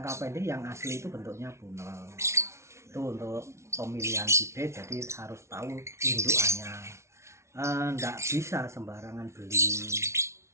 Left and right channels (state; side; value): late; left; 0.13 ms